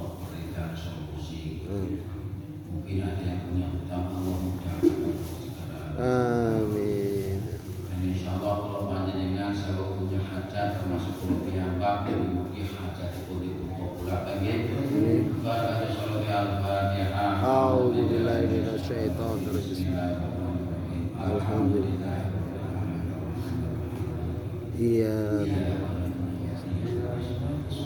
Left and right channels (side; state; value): both; identical; correlation 1.00